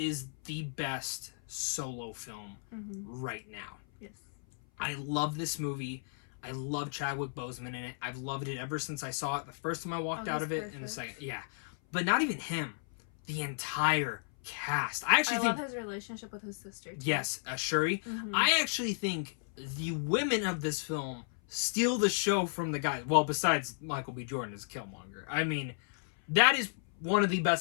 the best solo film right now. Yes. I love this movie. I love Chadwick Boseman in it. I've loved it ever since I saw it. The first time I walked out of it, perfect. and it's like, yeah. But not even him. The entire cast. I actually think... love his relationship with his sister, too. Yes, Shuri. I actually think the women of this film steal the show from the guys. Well, besides Michael B. Jordan as Killmonger. I mean, that is one of the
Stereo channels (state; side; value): silent; right; 55 dB below the other